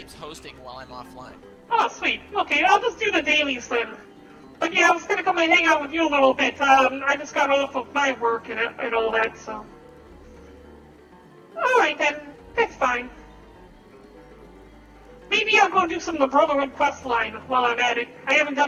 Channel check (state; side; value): identical; both; correlation 1.00